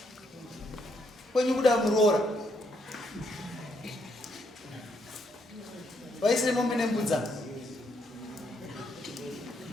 Kwenyu kuda muroora. Vaisire mombe nembudza.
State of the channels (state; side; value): normal; both; correlation 0.75